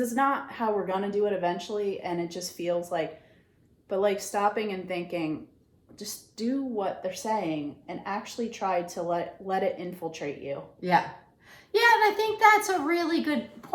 not how we're going to do it eventually. And it just feels like, but like stopping and thinking, just do what they're saying and actually try to let it infiltrate you. Yeah. Yeah, and I think that's a really good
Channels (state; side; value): identical; both; correlation 1.00